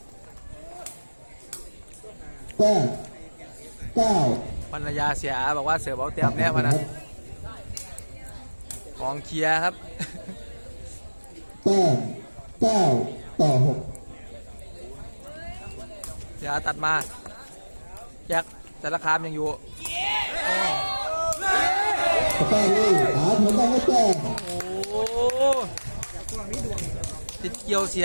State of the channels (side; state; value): both; inverted; correlation -1.00